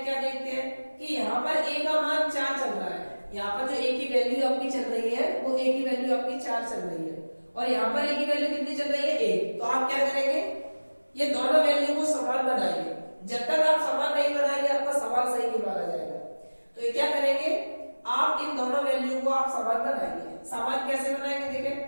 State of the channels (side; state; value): both; inverted; correlation -1.00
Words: क्या देखते हैं कि यहाँ पर a का मान 4 चल रहा है। यहाँ पर जो a की वैल्यू आपकी चल रही है वो a की वैल्यू आपकी 4 चल रही है, और यहाँ पर a की वैल्यू कितनी चल रही है, 1। तो आप क्या करेंगे, ये दोनों वैल्यू को समान बनाइए। जब तक आप समान नहीं बनाएंगे आपका सवाल सही नहीं माना जाएगा। तो ये क्या करेंगे, आप इन दोनों वैल्यू को आप समान बनाएंगे। समान कैसे बनाएंगे, देखें